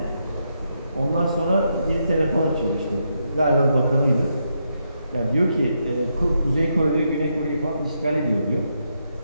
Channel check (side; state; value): both; inverted; correlation -0.81